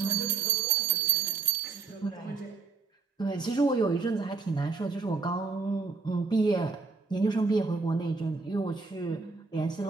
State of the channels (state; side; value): quieter; left; 4.3 dB